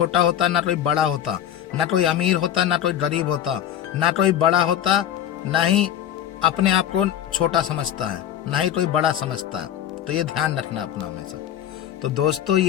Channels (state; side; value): quieter; right; 10.6 dB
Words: होता, ना कोई बड़ा होता, ना कोई अमीर होता, ना कोई गरीब होता, ना कोई बड़ा होता, ना ही अपने आप को छोटा समझता है, ना ही कोई बड़ा समझता है। तो ये ध्यान रखना अपना हमेशा। तो दोस्तों,